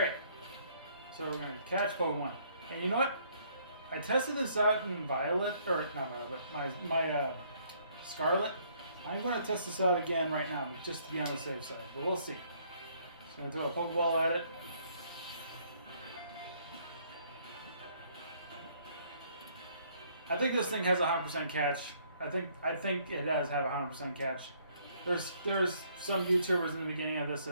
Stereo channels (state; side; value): inverted; both; correlation -0.65